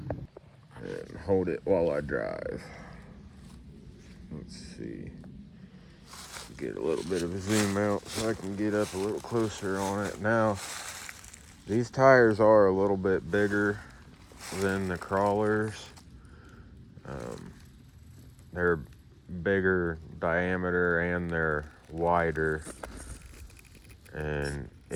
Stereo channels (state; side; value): identical; both; correlation 1.00